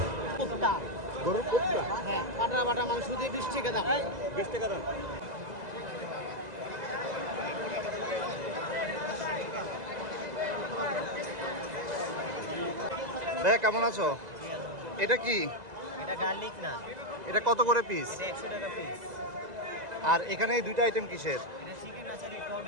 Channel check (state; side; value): late; left; 2.0 ms